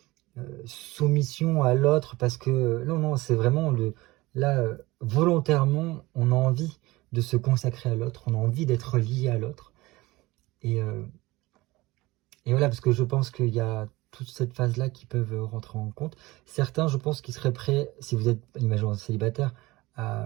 soumission à l'autre, parce que non, c'est vraiment là, volontairement, on a envie de se consacrer à l'autre, on a envie d'être lié à l'autre. Et voilà, parce que je pense qu'il y a toute cette phase-là qui peuvent rentrer en compte. Certains, je pense, qui seraient prêts, si vous êtes, imaginons, célibataire,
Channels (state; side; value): quieter; left; 20.5 dB